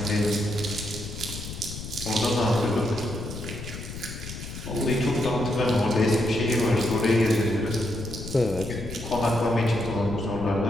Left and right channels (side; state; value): left; noise; rumble, 9 dB below the sound